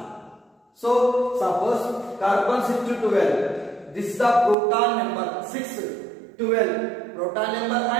So suppose carbon 6 to 12, this is the proton number 6, 12 proton number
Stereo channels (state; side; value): drops out; left; at 4.5 s